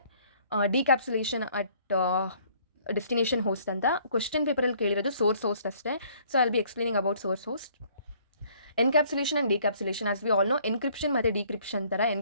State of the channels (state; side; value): inverted; both; correlation -0.60